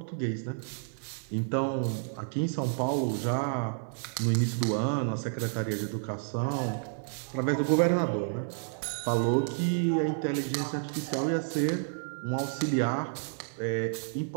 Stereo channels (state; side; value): silent; left; 58 dB below the other